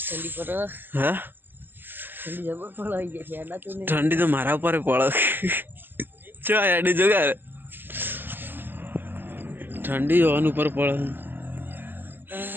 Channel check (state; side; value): late; left; 0.094 ms